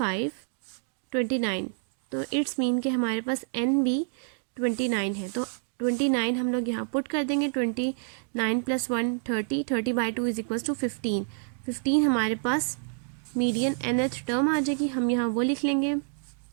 तो इट्स मीन कि हमारे पास n भी 29 है। तो 29 हम लोग यहाँ पुट कर देंगे, 29 + 1 30 by 2 इज इक्वल्स टू 15 हमारे पास मीडियन nth टर्म आ जाएगी। हम यहाँ वो लिख लेंगे,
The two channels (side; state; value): left; silent; 59 dB below the other